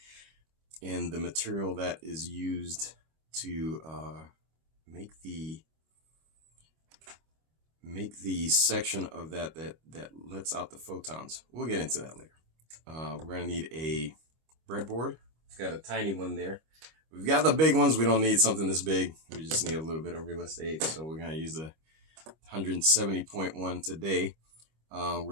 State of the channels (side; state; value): left; late; 25 ms